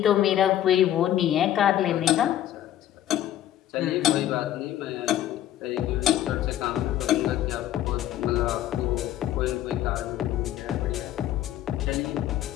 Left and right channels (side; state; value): right; quieter; 12.2 dB